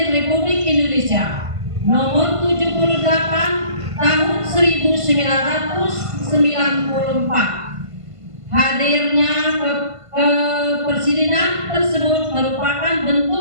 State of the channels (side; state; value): left; late; 1.5 ms